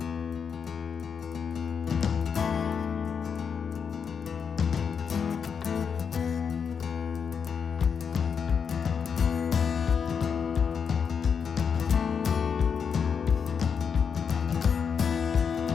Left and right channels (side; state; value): right; quieter; 6.6 dB